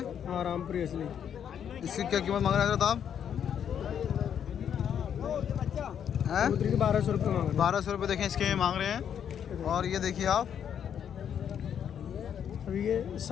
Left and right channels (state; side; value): quieter; right; 8.7 dB